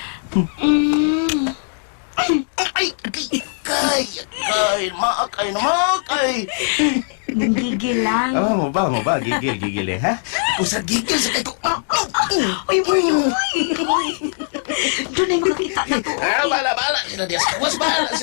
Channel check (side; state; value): right; silent; digital silence